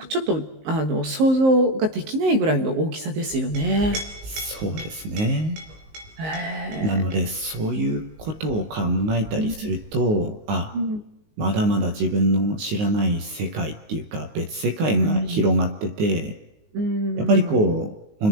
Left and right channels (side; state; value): left; late; 19 ms